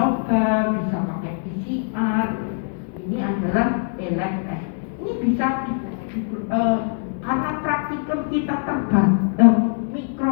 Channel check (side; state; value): right; silent; 64 dB below the other